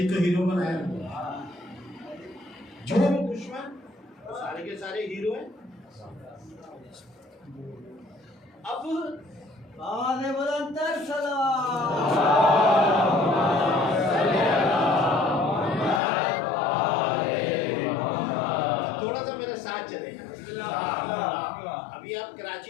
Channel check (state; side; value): drops out; right; at 16.0 s